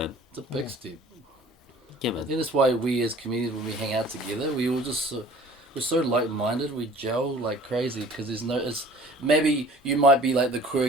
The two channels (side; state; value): both; normal; correlation 0.49